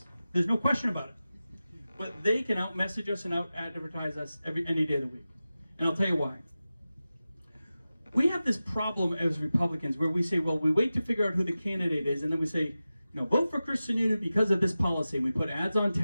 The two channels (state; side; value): inverted; both; correlation -0.94